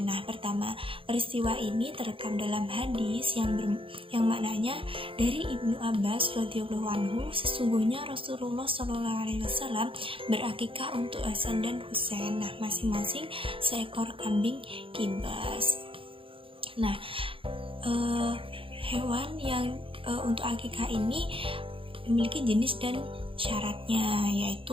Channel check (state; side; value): late; left; 0.26 ms